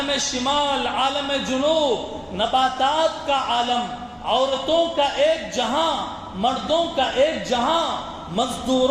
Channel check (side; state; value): both; identical; correlation 1.00